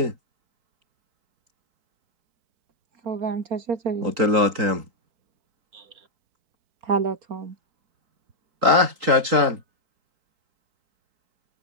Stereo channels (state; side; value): late; left; 3.8 ms